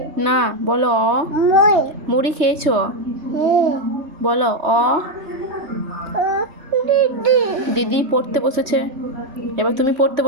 না বলো অ। মুই মুড়ি খেয়েছো? বলো অ। দিদি দিদি পড়তে বসেছে, এবার তুমি পড়তে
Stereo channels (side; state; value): left; late; 3.2 ms